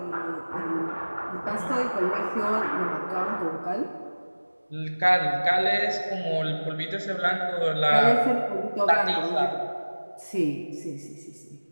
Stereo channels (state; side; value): inverted; both; correlation -1.00